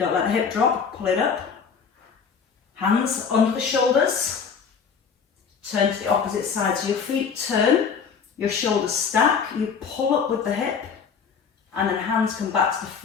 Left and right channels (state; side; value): quieter; right; 6.2 dB